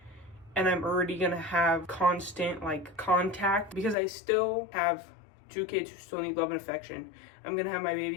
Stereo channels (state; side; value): drops out; right; at 4.0 s